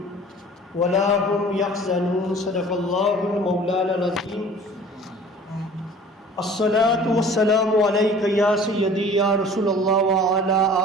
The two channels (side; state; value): both; normal; correlation 0.46